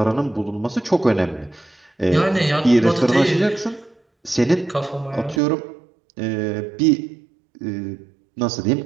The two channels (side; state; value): left; drops out; at 5.4 s